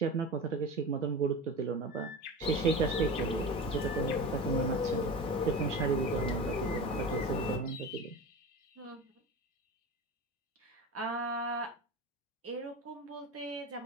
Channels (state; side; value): normal; both; correlation 0.30